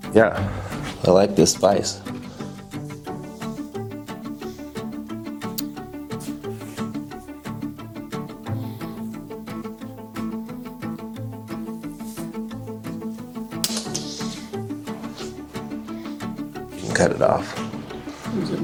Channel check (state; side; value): identical; both; correlation 1.00